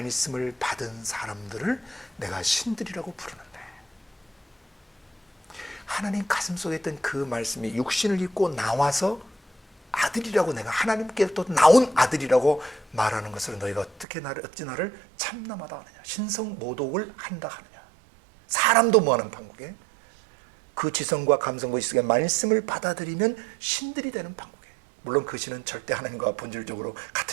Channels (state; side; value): drops out; left; at 14.1 s